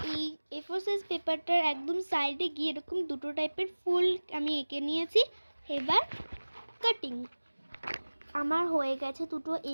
এই A4 সাইজ পেপারটার একদম সাইডে গিয়ে এরকম দুটো টাইপের ফুল আমি এঁকে নিয়েছি। এবার কাটিং আমার হয়ে গেছে, দুটো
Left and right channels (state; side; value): inverted; both; correlation -1.00